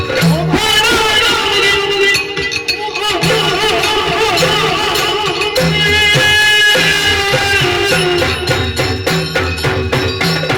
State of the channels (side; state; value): both; identical; correlation 1.00